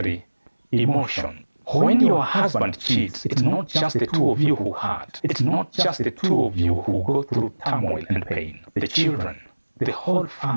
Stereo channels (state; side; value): inverted; both; correlation -1.00